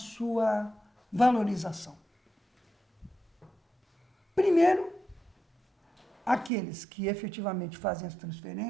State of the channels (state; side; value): drops out; left; at 6.5 s